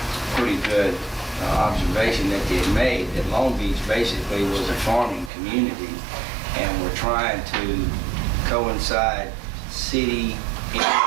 pretty good observation that they had made, that Long Beach basically was a farming community, and we're trying to coincide city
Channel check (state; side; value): drops out; left; at 5.3 s